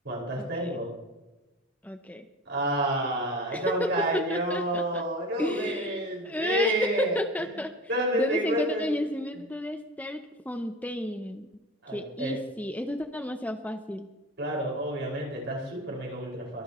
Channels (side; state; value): both; normal; correlation 0.33